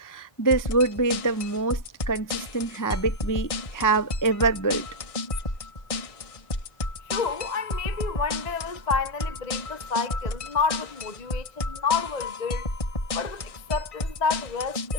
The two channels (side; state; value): right; late; 1.6 ms